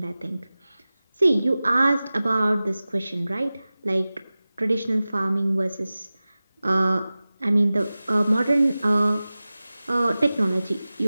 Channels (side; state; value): both; inverted; correlation -0.97